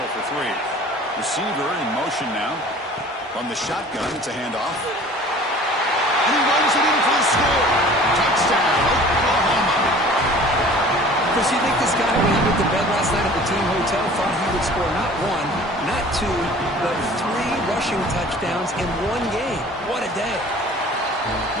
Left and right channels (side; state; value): both; normal; correlation 0.47